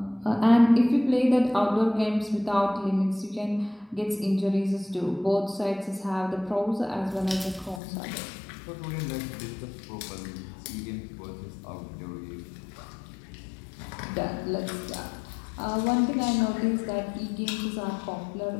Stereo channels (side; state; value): right; drops out; at 7.8 s